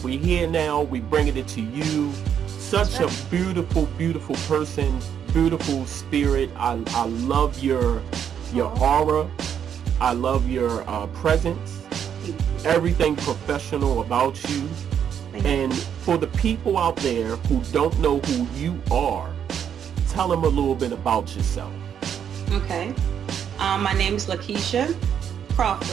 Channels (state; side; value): quieter; left; 8.5 dB